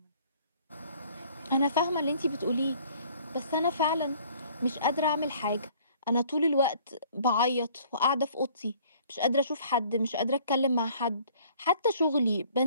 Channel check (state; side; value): inverted; both; correlation -0.56